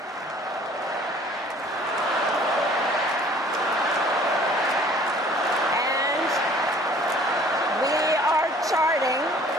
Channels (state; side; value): normal; both; correlation 0.53